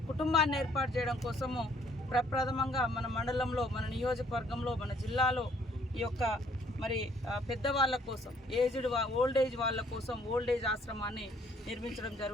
కుటుంబాన్ని ఏర్పాటు చేయడం కోసము ప్రప్రథమంగా మన మండలంలో, మన నియోజకవర్గంలో, మన జిల్లాలో ఈ యొక్క మరి పెద్దవాళ్ళ కోసం, ఓల్డ్ ఏజ్ వాళ్ళ కోసం ఓల్డ్ ఏజ్ ఆశ్రమాన్ని నిర్మించడం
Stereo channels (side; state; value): both; normal; correlation 0.63